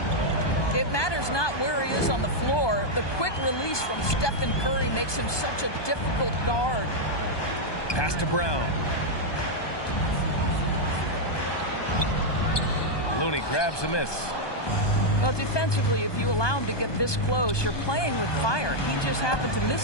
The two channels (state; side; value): late; right; 1.2 ms